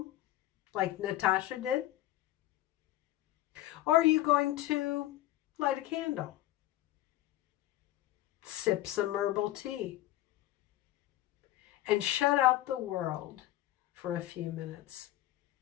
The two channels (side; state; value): right; quieter; 15.0 dB